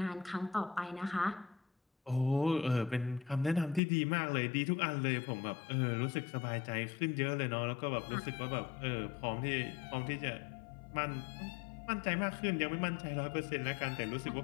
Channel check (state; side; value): drops out; right; at 3.8 s